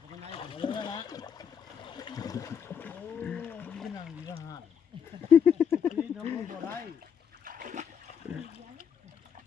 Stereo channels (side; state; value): right; quieter; 7.7 dB